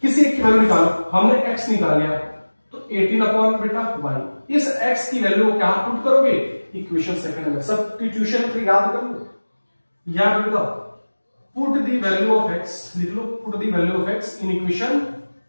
किसी एक की वैल्यू निकालो, हमने x निकाल लिया तो 18 अपॉन बेटा y। इस x की वैल्यू को क्या पुट करोगे इक्वेशन सेकंड में, सब्स्टिट्यूशन याद कर लो। याद रखो put the value of x, लिख लो put the value of x in equation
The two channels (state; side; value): inverted; both; correlation -1.00